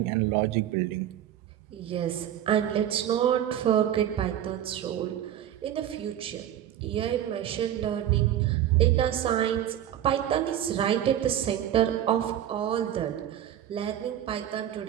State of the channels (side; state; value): left; quieter; 11.1 dB